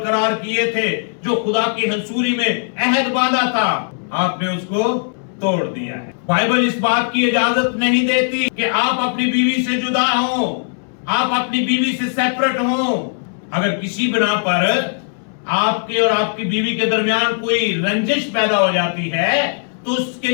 کیے تھے, جو خدا کی حضوری میں عہد باندھا تھا, آپ نے اس کو توڑ دیا ہے. بائبل اس بات کی اجازت نہیں دیتی کہ آپ اپنی بیوی سے جدا ہوں, آپ اپنی بیوی سے سیپریٹ ہوں. اگر کسی بنا پر آپ کے اور آپ کی بیوی کے درمیان کوئی رنجش پیدا ہو جاتی ہے تو اس کے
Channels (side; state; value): right; silent; 67 dB below the other